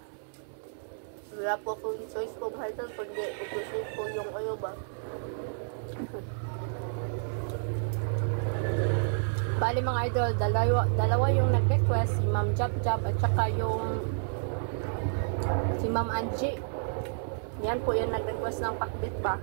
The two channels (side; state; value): left; silent; 58 dB below the other